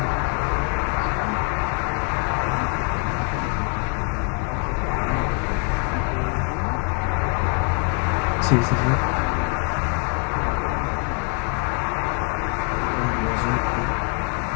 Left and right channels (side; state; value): right; quieter; 36.1 dB